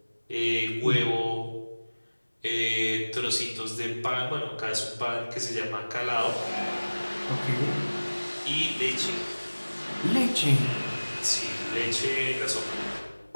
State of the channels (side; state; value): both; inverted; correlation -1.00